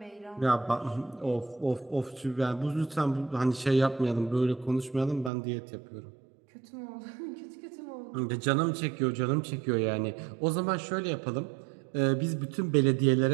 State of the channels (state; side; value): drops out; left; at 5.3 s